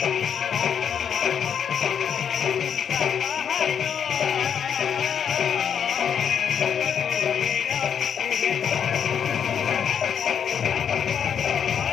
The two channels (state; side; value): quieter; right; 7.9 dB